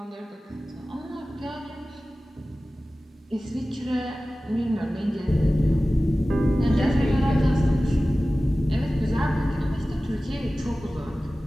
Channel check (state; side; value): normal; both; correlation 0.96